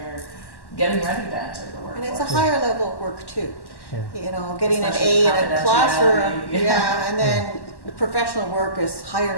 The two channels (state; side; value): late; right; 1.1 ms